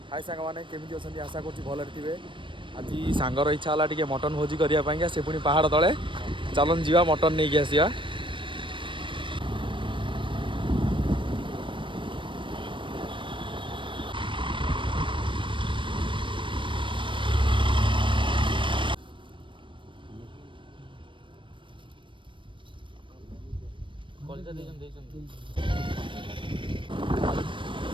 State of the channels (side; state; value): left; late; 0.24 ms